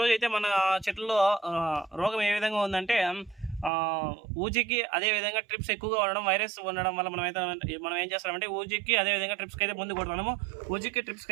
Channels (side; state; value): left; drops out; at 3.7 s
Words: అయితే మన చెట్లలో రోగం ఏ విధంగా ఉందంటే ఊజికి అదేవిధంగా ట్రిప్స్ ఎక్కువగా ఉండడం, వైరస్ ఉండడం వల్ల మనం ఏం చేస్తామంటే ఊజికి అదేవిధంగా ట్రిప్స్కి అయితే ముందు కొడుతున్నాము. ఊజికి